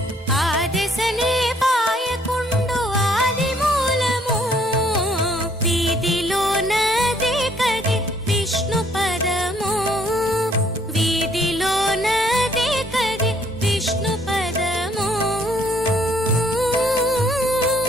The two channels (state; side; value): normal; both; correlation 0.64